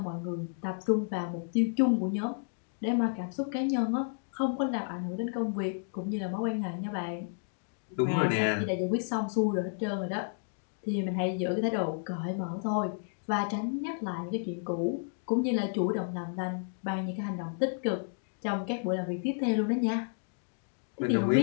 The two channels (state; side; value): silent; right; digital silence